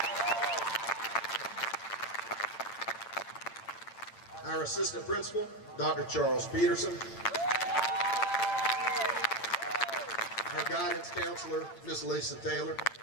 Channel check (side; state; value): right; late; 8.8 ms